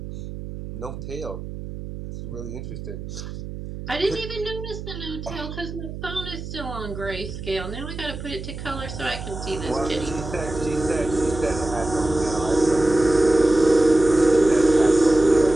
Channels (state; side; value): noise; right; hum, 9 dB below the sound